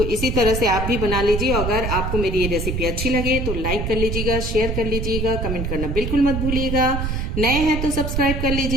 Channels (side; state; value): right; noise; rumble, 2 dB below the sound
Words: इसी तरह से आप भी बना लीजिए। अगर आपको मेरी ये रेसिपी अच्छी लगे तो लाइक कर लीजिएगा, शेयर कर लीजिएगा, कमेंट करना बिल्कुल मत भूलिएगा। नए हैं तो सब्सक्राइब कर